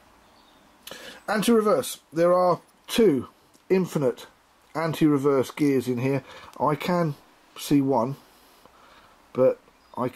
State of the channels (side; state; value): both; identical; correlation 1.00